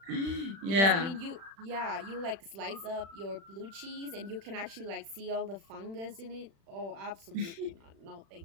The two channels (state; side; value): late; left; 36 ms